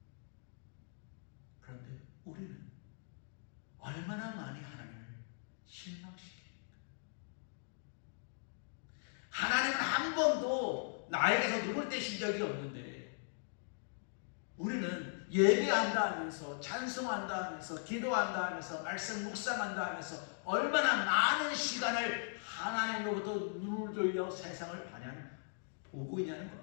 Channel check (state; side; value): silent; right; digital silence